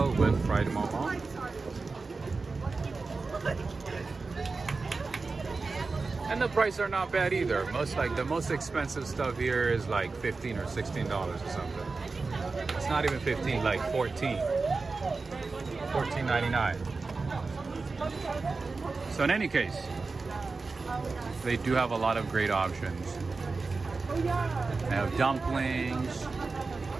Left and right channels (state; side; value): quieter; left; 4.0 dB